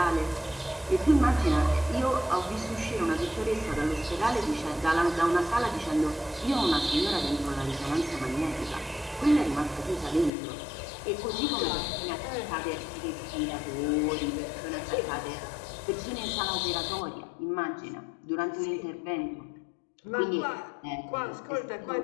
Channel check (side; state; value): right; drops out; at 10.3 s